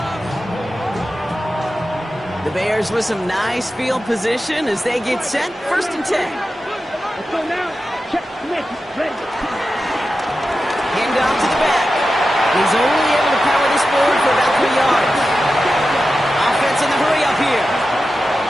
The Bears with some nice field position as they get set. 1st and 10. Let's go now. Check. Ready. Hand off to the back. He's only able to power this forward for about 3 yards. Offense in the hurry up here.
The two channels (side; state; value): both; normal; correlation 0.92